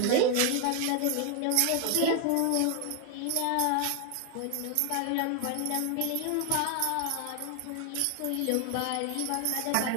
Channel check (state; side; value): different; both; correlation 0.01